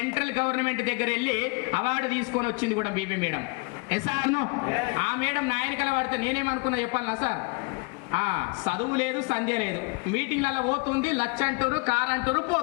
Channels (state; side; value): quieter; right; 30.6 dB